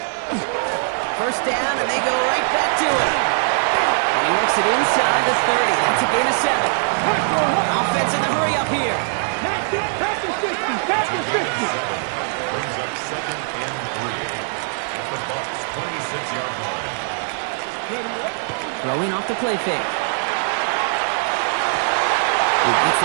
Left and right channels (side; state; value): left; silent; digital silence